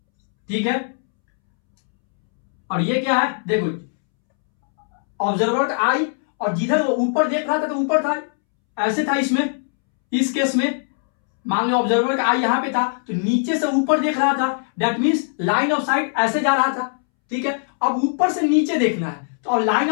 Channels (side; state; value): right; silent; 65 dB below the other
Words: ठीक है, और ये क्या है, देखो, ऑब्जर्वर का आई, और जिधर वो ऊपर देख रहा था तो ऊपर था, ऐसे था इसमें, इस केस में। मान लो ऑब्जर्वर का आई यहां पे था तो नीचे से ऊपर देख रहा था, that means line of site ऐसे जा रहा था, ठीक है। अब ऊपर से नीचे देखना है तो अब लाइन